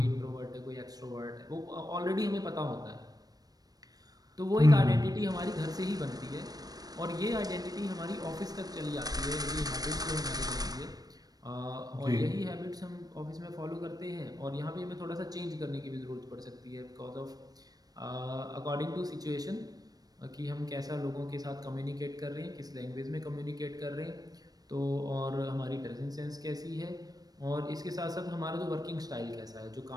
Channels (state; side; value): late; left; 0.19 ms